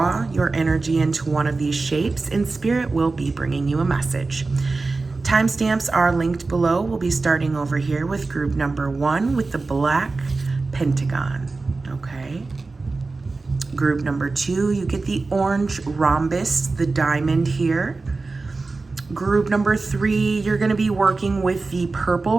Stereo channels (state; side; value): quieter; left; 3.7 dB